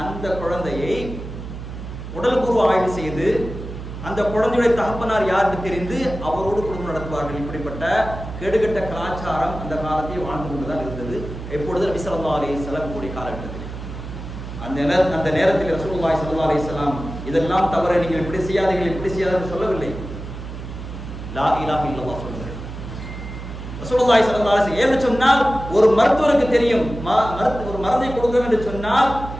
அந்த குழந்தையை உடல்பூர்வ ஆய்வு செய்து அந்த குழந்தையுடைய தகப்பனார் யாருக்கு தெரிந்து அவரோடு குடும்பம் நடத்துவார்கள். இப்படிப்பட்ட கெடுகட்ட கலாச்சாரம் அந்த காலத்தில் வாழ்ந்து கொண்டுதான் இருந்தது. எப்பொழுது நபி ஸல்லல்லாஹு அலைஹி வஸல்லம் கூடிய காலகட்டத்தில் அந்த நேரத்தில் ரசூலுல்லாஹி ஸல்லல்லாஹு அலைஹி வஸல்லம் இதெல்லாம் தவறு, நீங்கள் இப்படி செய்யாதீர்கள் இப்படி செய்யாதீர்கள் சொல்லவில்லை. லா இலாஹ இல்லல்லாஹ் சொல்லுங்கள். ரசூலுல்லாஹி ஸல்லல்லாஹு அலைஹி வஸல்லம் ஏன்னு சொன்னால், ஒரு மருத்துவருக்கு தெரியும் ஒரு மருந்தை கொடுக்கணும் என்று சொன்னால்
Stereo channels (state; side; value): noise; right; hum, 9 dB below the sound